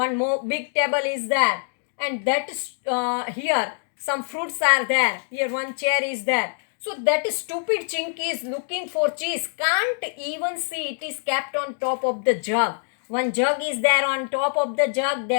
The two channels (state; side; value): silent; right; 62 dB below the other